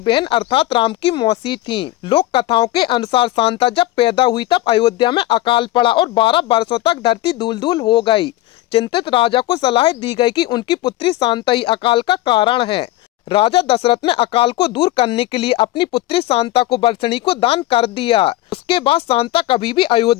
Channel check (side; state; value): right; quieter; 16.4 dB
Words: अर्थात राम की मौसी थीं। लोक कथाओं के अनुसार शांता जब पैदा हुई तब अयोध्या में अकाल पड़ा और 12 वर्षों तक धरती धूल धूल हो गई। चिंतित राजा को सलाह दी गई कि उनकी पुत्री शांता ही अकाल का कारण है। राजा दशरथ ने अकाल को दूर करने के लिए अपनी पुत्री शांता को वर्षिणी को दान कर दिया। उसके बाद शांता कभी भी